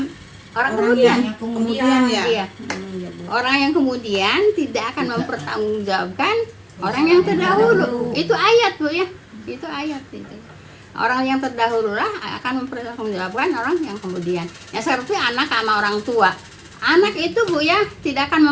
Orang yang kemudian. kemudian ya. Iya. Ya, Bu. Orang yang kemudian tidak akan mempertanggungjawabkan orang yang terdahulu. Itu ayat bu ya. Itu ayat itu. Orang yang terdahulu lah akan mempertanggungjawabkan orang yang kemudian. Ya seperti anak sama orang tua. Anak itu bu ya tidak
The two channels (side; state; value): both; identical; correlation 1.00